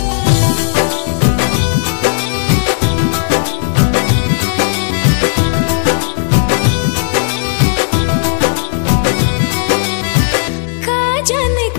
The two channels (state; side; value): silent; right; digital silence